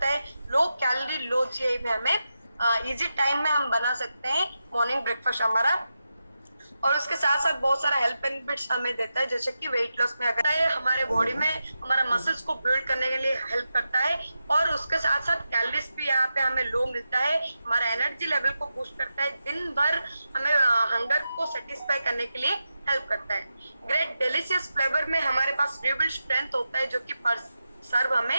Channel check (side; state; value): both; inverted; correlation -0.90